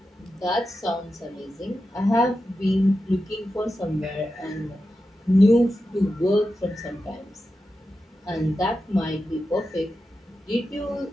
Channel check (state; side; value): normal; both; correlation 0.90